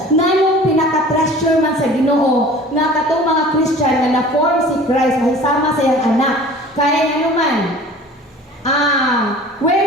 Nganong pinaka-treasure man sa Ginoo nga katong mga Christian na na-form si Christ, mahisama sa iyang anak. Kaya ano man, where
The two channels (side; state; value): both; normal; correlation 0.44